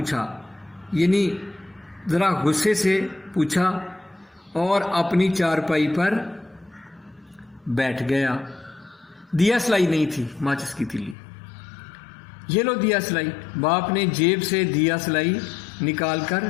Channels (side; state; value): right; drops out; at 11.2 s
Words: یعنی ذرا غصے سے پوچھا اور اپنی چارپائی پر بیٹھ گیا. دیا سلائی نہیں تھی، ماچس کی تیلی. یہ لو دیا سلائی. باپ نے جیب سے دیا سلائی نکال کر